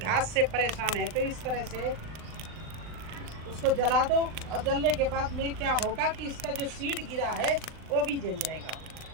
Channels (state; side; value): late; left; 39 ms